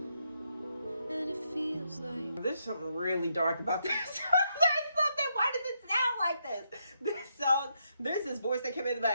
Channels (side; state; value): both; inverted; correlation -0.79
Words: and it feels like There's something really dark about this. There's something. Why does it sound like this? This song, there's this voice that came in the